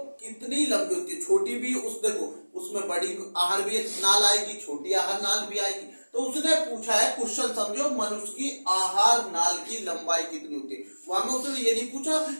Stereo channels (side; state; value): both; inverted; correlation -1.00